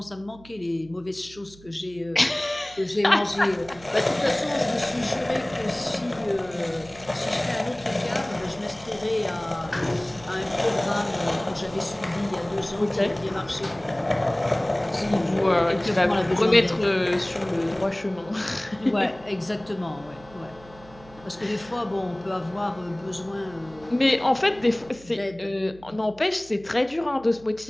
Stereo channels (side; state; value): right; noise; hum, 22 dB below the sound